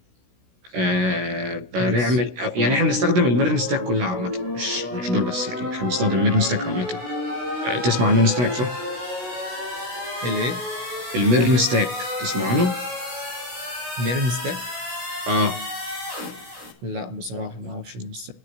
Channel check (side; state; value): left; late; 16 ms